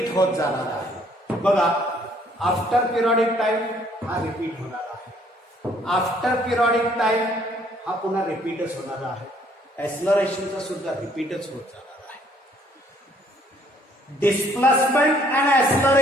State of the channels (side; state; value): both; normal; correlation 0.63